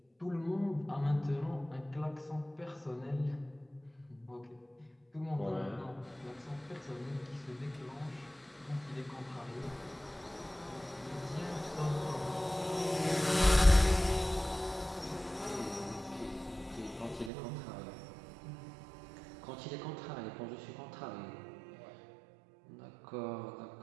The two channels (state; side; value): drops out; left; at 17.3 s